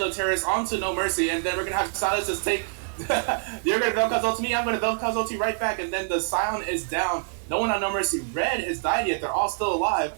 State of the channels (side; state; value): left; silent; digital silence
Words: onto No Mercy, and then we're gonna have Silas just take. You're gonna Vel'Koz ult me, I'm gonna Vel'Koz ult right back, and then the Sion is down. No one on No Mercy Red has died yet. They're all still alive.